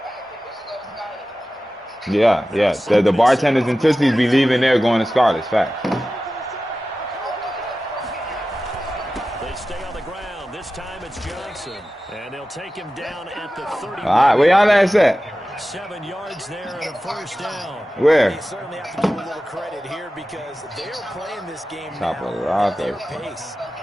Yeah. The bartenders and Tootsies be leaving there going to Scarlet's. Fact. They stay on the ground. This time it's Johnson. And they'll take him down at the 30. All right, where y'all at? 7 yards there and a 1st down. Where? You certainly have to give a little credit here because they're playing this game Top now of the at their roster. pace.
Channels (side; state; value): both; normal; correlation 0.95